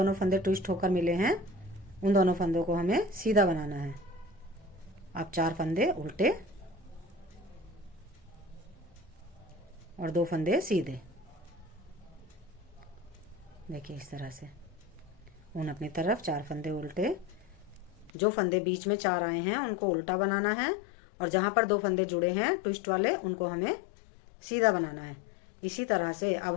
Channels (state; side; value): drops out; right; at 18.1 s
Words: फंदे ट्विस्ट होकर मिले हैं उन दोनों फंदों को हमें सीधा बनाना है। अब 4 फंदे उल्टे और 2 फंदे सीधे। देखिए इस तरह से उन अपनी तरफ 4 फंदे उल्टे। जो फंदे बीच में 4 आए हैं उनको उल्टा बनाना है और जहां पर 2 फंदे जुड़े हैं ट्विस्ट वाले उनको हमें सीधा बनाना है। इसी तरह से अब